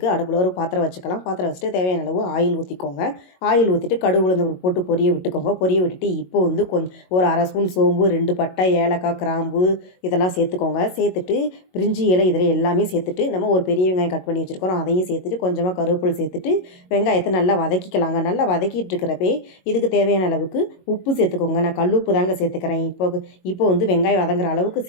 அடுப்பில் ஒரு பாத்திரம் வச்சுக்கலாம். பாத்திரம் வச்சுட்டு தேவையான அளவு ஆயில் ஊற்றிக்கோங்க. ஆயில் ஊற்றிட்டு கடுகு உளுந்து போட்டு பொரிய விட்டுக்கோங்க. பொரிய விட்டுட்டு இப்போ வந்து ஒரு அரை ஸ்பூன் சோம்பு, 2 பட்டை, ஏலக்காய், கிராம்பு இதெல்லாம் சேர்த்துக்கோங்க. சேர்த்துட்டு பிரிஞ்சி இலை இதில் எல்லாமே சேர்த்துட்டு நம்ம ஒரு பெரிய வெங்காயம் கட் பண்ணி வச்சுருக்கோம். அதையும் சேர்த்துட்டு கொஞ்சமாக கருவேப்பிலை சேர்த்துட்டு வெங்காயத்தை நல்லா வதக்கிக்கலாங்க. நல்லா வதக்கிட்டு இருக்கிறப்பே இதுக்கு தேவையான அளவுக்கு உப்பு சேர்த்துக்கோங்க. நான் கல் உப்பு தாங்க சேர்த்துக்கிறேன். இப்போ வந்து வெங்காயம் வதங்குற அளவுக்கு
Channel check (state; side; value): late; right; 22 ms